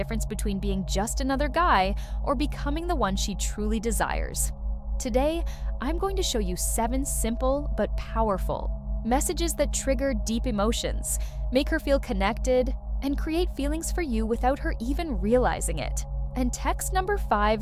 between being just another guy or becoming the one she truly desires. Today, I'm going to show you 7 simple but powerful messages that trigger deep emotions, make her feel connected, and create feelings for you without her even realizing it. And text number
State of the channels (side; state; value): both; identical; correlation 1.00